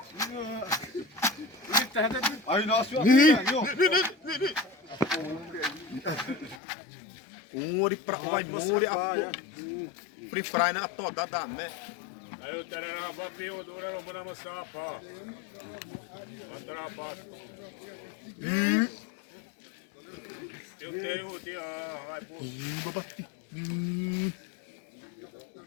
Aí nós Uri pra vai muri a free fry na toda da né. Aí o terá papinho dura no mana mosapa. Andra pa. Eu tenho o dia, vai pô.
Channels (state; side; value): drops out; right; at 6.6 s